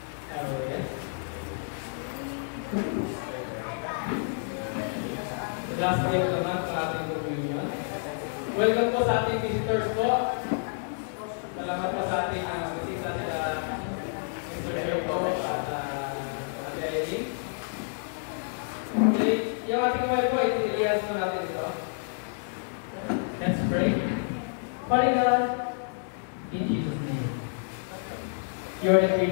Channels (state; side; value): silent; right; digital silence